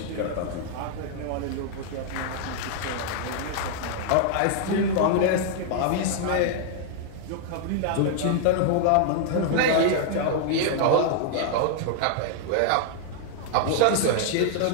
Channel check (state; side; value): different; both; correlation -0.01